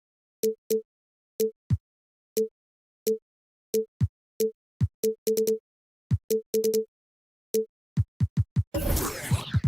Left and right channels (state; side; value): normal; both; correlation 0.98